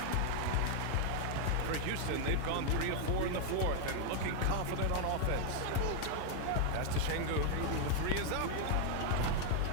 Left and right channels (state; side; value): different; both; correlation 0.00